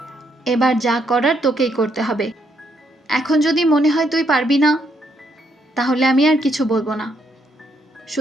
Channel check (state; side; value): normal; both; correlation 0.74